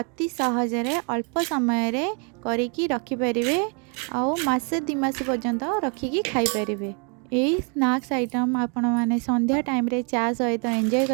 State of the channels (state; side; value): quieter; left; 37.0 dB